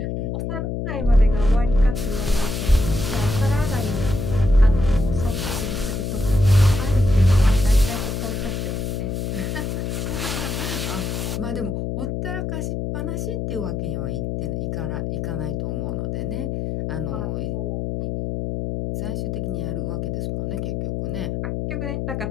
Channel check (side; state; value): left; noise; hum, 2 dB below the sound